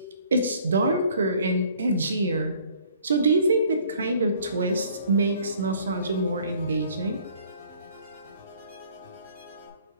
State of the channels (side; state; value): both; inverted; correlation -0.56